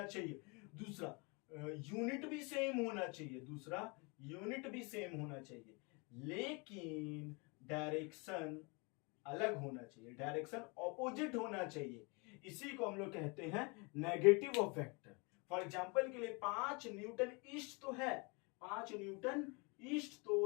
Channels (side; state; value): right; quieter; 30.3 dB